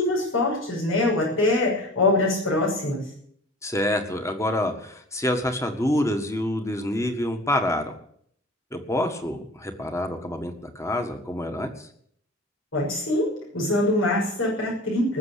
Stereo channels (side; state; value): both; normal; correlation 0.42